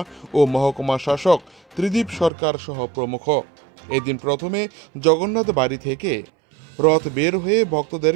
ও মহকুমা শাসক ত্রিদীপ সরকার সহ প্রমুখ। এদিন প্রথমে জগন্নাথ বাড়ি থেকে রথ বের হয়ে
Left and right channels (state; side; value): drops out; left; at 2.3 s